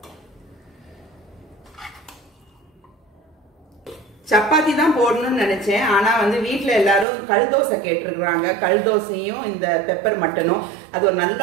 சப்பாத்தி தான் போடணும்னு நினைச்சேன். ஆனா வந்து வீட்டுல எல்லாரும் கல் தோசை கேட்டிருக்கிறாங்க. கல் தோசையும் இந்த பெப்பர் மட்டனும் அது ஒரு நல்ல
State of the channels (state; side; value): drops out; left; at 7.1 s